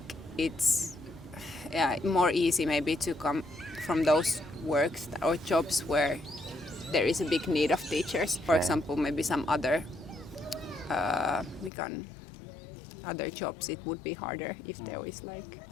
it's more easy maybe to come from those works or jobs where there is a big need of teachers. For example, maybe some other other jobs, it would be harder if there was like.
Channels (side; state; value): right; drops out; at 11.7 s